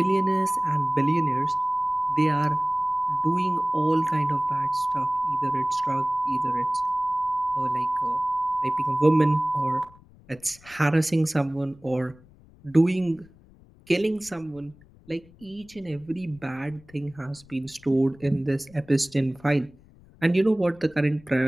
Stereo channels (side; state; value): left; noise; rumble, 25 dB below the sound